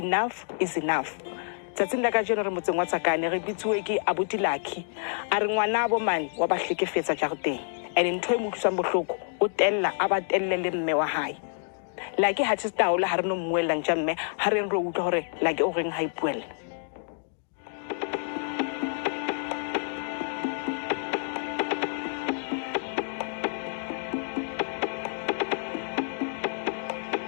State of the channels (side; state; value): right; silent; digital silence